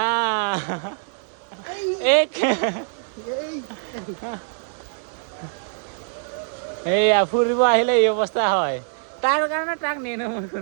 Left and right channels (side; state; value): left; silent; digital silence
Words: এইয়া ফুৰিব আহিলে এই অৱস্থা হয় তাৰ কাৰণে তাক নিনো মই